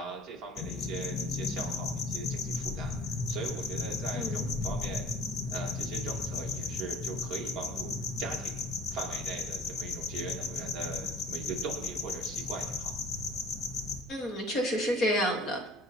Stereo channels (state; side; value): normal; both; correlation 0.48